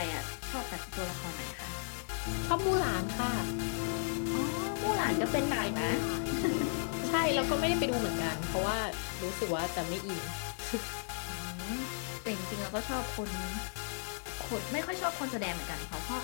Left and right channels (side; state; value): right; silent; digital silence